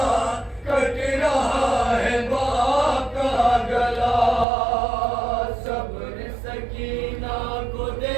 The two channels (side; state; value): left; drops out; at 4.5 s